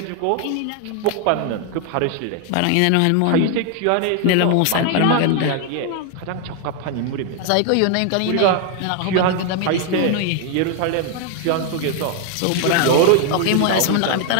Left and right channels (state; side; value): different; both; correlation 0.00